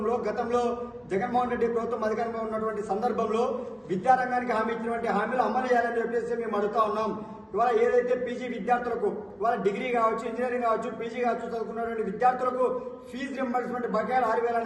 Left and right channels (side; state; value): both; identical; correlation 1.00